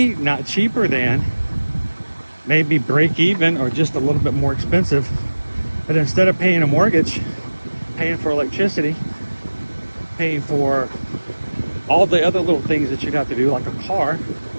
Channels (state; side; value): inverted; both; correlation -1.00